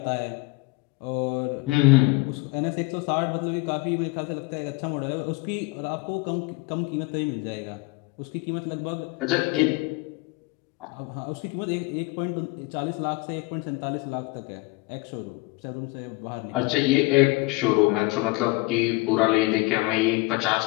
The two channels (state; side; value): quieter; right; 23.8 dB